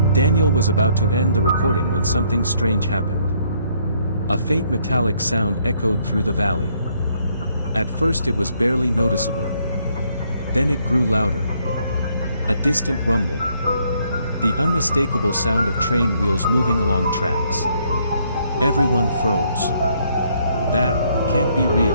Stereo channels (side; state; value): both; inverted; correlation -0.69